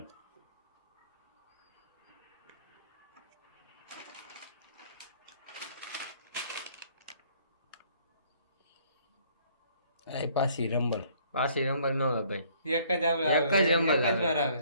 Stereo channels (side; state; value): both; inverted; correlation -0.61